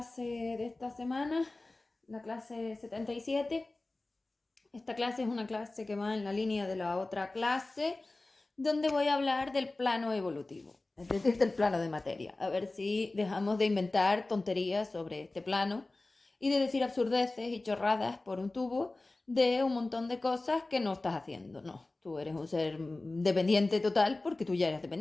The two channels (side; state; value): right; quieter; 3.0 dB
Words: de esta semana, la clase 77. Esta clase es una clase que va en la línea de la otra clase, donde voy a hablar del plano evolutivo, es decir, del plano de materia. A ver si dejamos de inventar tonterías sobre este plano y de decir absurdeces y chorradas por un tubo de un montón de cosas que no estás haciendo. No, tú eres un ser dependiente total porque tú ya eres